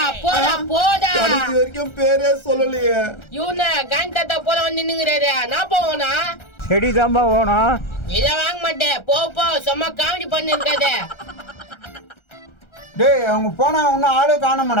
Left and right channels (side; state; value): right; late; 1.3 ms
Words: போடா. கடைசி வரைக்கும் பேரே சொல்லலையே. இவன காந்தாத்தா போல வந்து நின்னுங்கறாரு. நான் போவனா? செடி தாம்பா வேணும். இத வாங்க மாட்டேன். போ சும்மா காமெடி பண்ணி இருக்காத. டேய் அவங்க போனா இன்னும் ஆளே